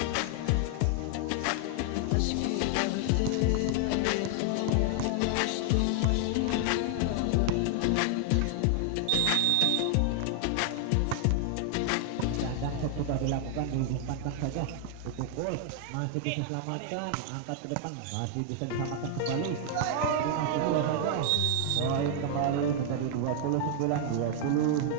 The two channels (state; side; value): different; both; correlation 0.00